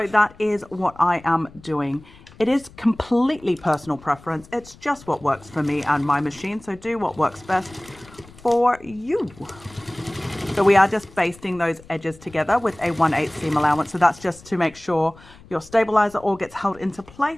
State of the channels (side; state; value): left; noise; rumble, 23 dB below the sound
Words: that is what I am doing. It is completely personal preference. It's just what works for me and my machine. So do what works best for you. So we are just basting those edges together with a 1/8 seam allowance. So that's just to make sure your stabilizer all gets held into